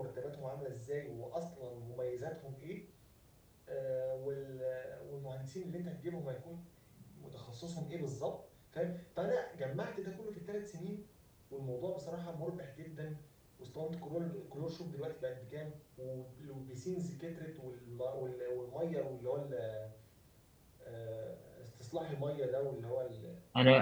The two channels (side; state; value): both; identical; correlation 1.00